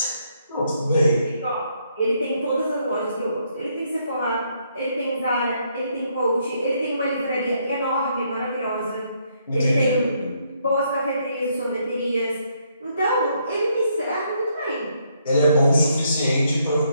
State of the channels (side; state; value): both; inverted; correlation -0.73